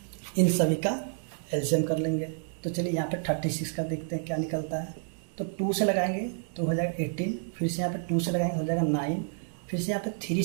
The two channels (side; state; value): left; silent; 58 dB below the other